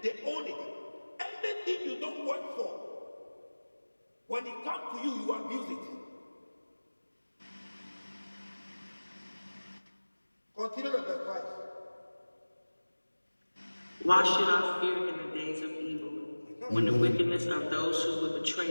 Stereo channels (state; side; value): inverted; both; correlation -1.00